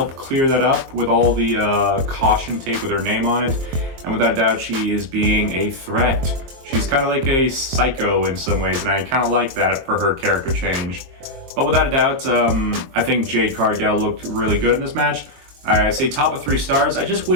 clear that up with all the caution tape with her name on it. And without a doubt, she is being a threat. She's kind of like a psycho in some ways, and I kind of like that for her character change. But without a doubt, I think Jade Cargill looked really good in this match. I say top of 3 stars. I just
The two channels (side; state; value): left; late; 23 ms